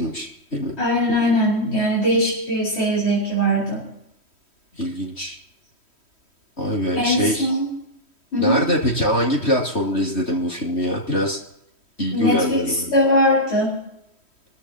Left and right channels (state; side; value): late; right; 3.1 ms